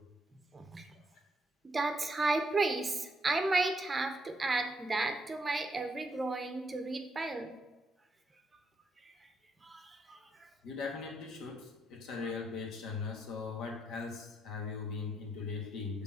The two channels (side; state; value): both; normal; correlation 0.78